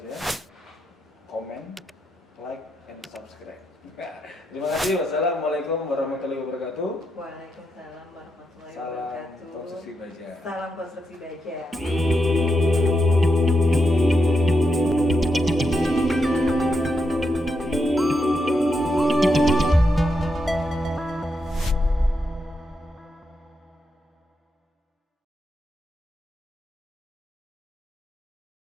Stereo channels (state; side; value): normal; both; correlation 0.84